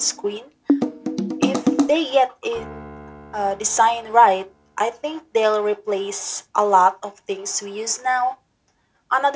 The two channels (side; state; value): both; identical; correlation 1.00